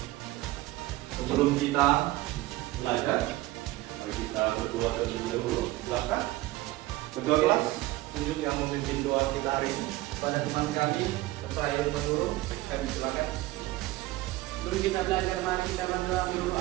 Sebelum kita belajar, mari kita berdoa terlebih dahulu. Silakan. Ketua kelas, tunjuk yang memimpin doa kita hari ini. Pada teman kami, saya menurut, kami silakan. Dulu kita belajar, mari kita berdoa menurut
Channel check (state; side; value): quieter; left; 17.8 dB